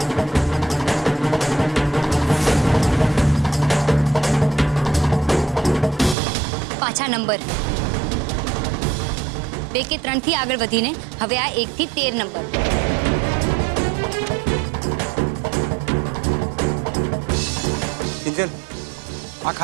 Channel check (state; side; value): drops out; left; at 6.2 s